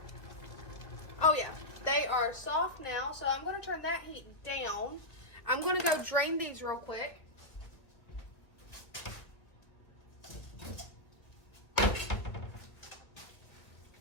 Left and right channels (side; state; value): right; late; 2.0 ms